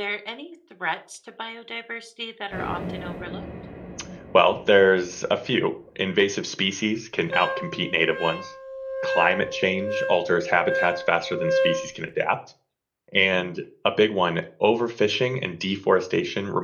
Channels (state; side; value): identical; both; correlation 1.00